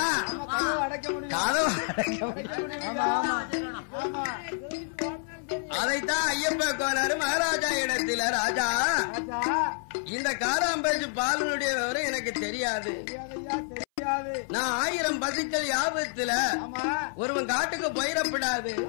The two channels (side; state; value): right; silent; 59 dB below the other